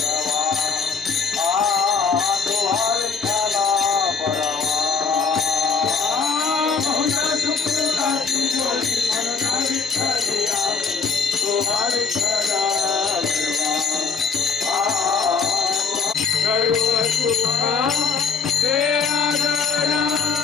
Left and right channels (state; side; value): quieter; right; 5.1 dB